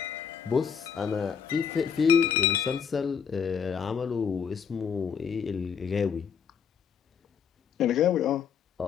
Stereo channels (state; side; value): quieter; right; 7.1 dB